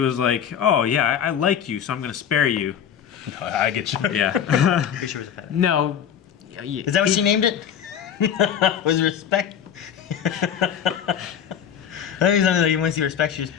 like, "Oh yeah, I like you, so I'm going to spare you." I get you. Yeah. Pretty sure it was a pet. No. Is that what she named it? Was respect? I think something like you want to see respect, you just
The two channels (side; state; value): right; quieter; 8.7 dB